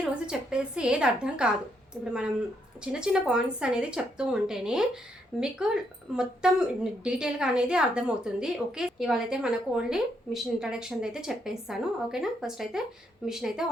రోజు చెప్పేసి ఏది అర్థం కాదు. ఇప్పుడు మనం చిన్న చిన్న పాయింట్స్ అనేది చెప్తూ ఉంటేనే మీకు మొత్తం డీటెయిల్గా అనేది అర్థమవుతుంది. ఓకే, ఇవాళ అయితే మనకు ఓన్లీ మిషన్ ఇంట్రడక్షన్ అయితే చెప్పేస్తాను. ఓకేనా, ఫస్ట్ అయితే మిషన్ అయితే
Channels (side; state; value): both; normal; correlation 0.76